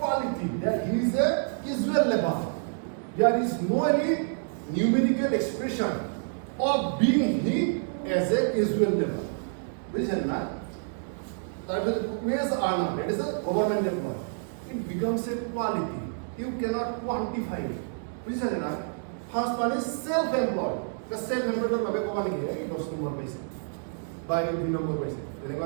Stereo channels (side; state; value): left; silent; digital silence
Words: that he is a casual labor. There is no any numerical expression of being he as a casual labor. বুঝছেন না তারপরে wage earner, that is a government employee. It becomes a quality. You cannot quantify it. বুঝছেন না First one is self-employed. The self-employed ভাবে কমা নেকি এই 10 নম্বর পাইছে বা এই 2 নম্বর পাইছে তেনেকুৱা